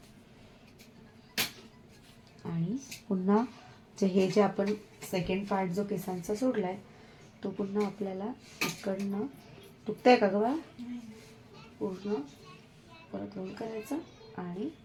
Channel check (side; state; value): both; identical; correlation 1.00